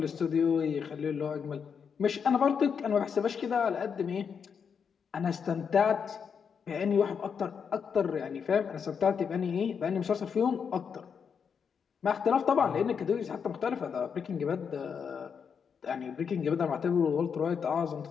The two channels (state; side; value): quieter; right; 6.7 dB